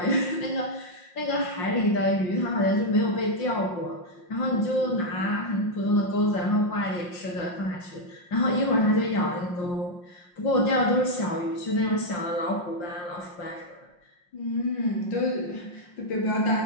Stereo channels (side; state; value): right; late; 5.6 ms